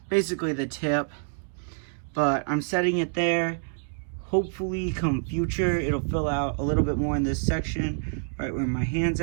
basically the tip, but I'm setting it there. Hopefully come future, it'll fill out a little bit more in this section, right where my hand's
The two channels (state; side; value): silent; left; digital silence